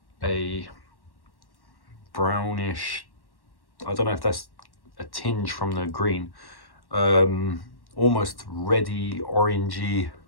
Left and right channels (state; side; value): late; right; 1.1 ms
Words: a brownish, I don't know if that's a tinge from the green, almost reddy, orangey,